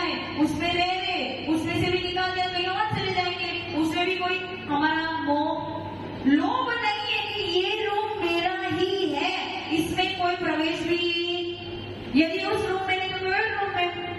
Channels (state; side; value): identical; both; correlation 1.00